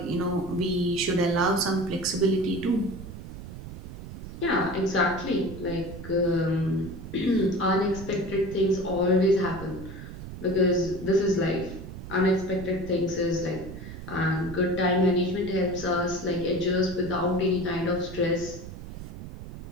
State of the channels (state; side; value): noise; right; rumble, 11 dB below the sound